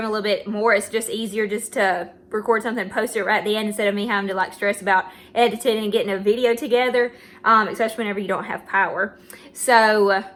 a little bit more. It's just easier just to record something and post it right at the end instead of me having to like stress about editing and getting a video together, especially whenever you don't have power. So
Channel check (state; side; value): identical; both; correlation 1.00